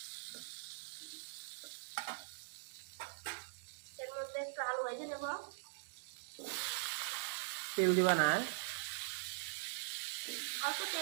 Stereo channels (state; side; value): silent; left; digital silence